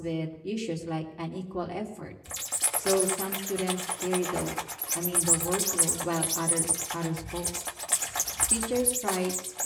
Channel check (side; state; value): both; identical; correlation 1.00